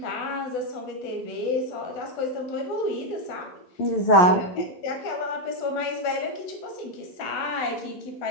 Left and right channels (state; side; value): late; right; 11 ms